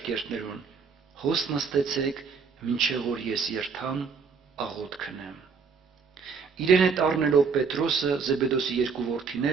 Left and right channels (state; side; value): quieter; left; 5.5 dB